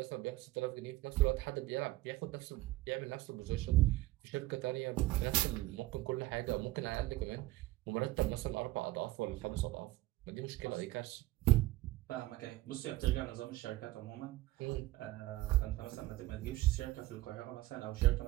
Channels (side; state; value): left; quieter; 17.9 dB